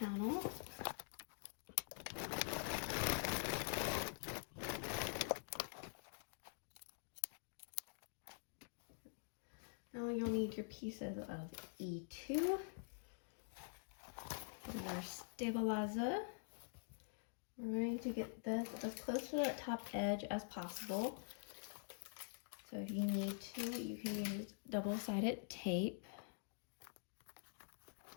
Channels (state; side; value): silent; right; digital silence